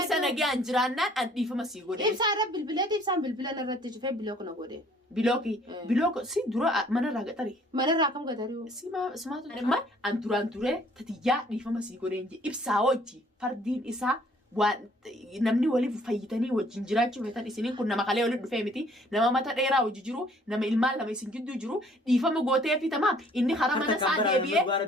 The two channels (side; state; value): both; normal; correlation 0.59